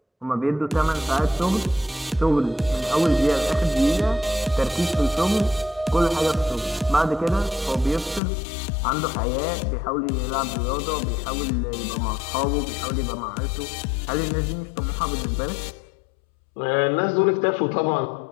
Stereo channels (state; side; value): drops out; right; at 8.2 s